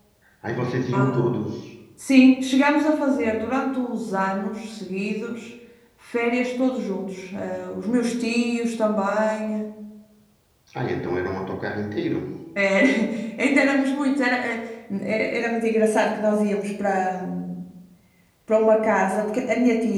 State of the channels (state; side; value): identical; both; correlation 1.00